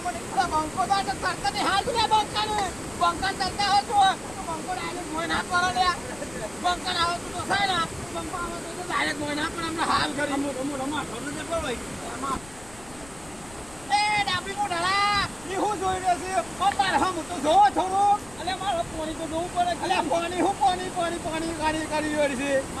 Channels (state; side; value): noise; left; rumble, 21 dB below the sound